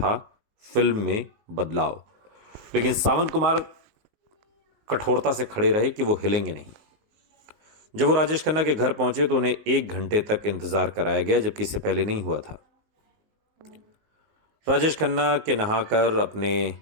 फिल्म में बदलाव। लेकिन सावन कुमार कठोरता से खड़े रहे कि वो हिलेंगे नहीं। जब वो राजेश खन्ना के घर पहुंचे तो उन्हें 1 घंटे तक इंतजार कराया गया, जबकि इससे पहले नहीं हुआ था। राजेश खन्ना के नहाकर अपने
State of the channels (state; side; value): late; left; 19 ms